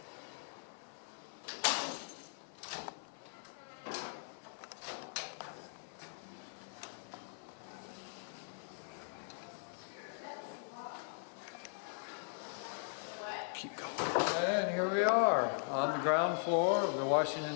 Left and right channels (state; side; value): silent; right; 51 dB below the other